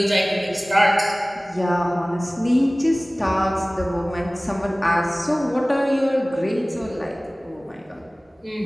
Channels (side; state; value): both; normal; correlation 0.98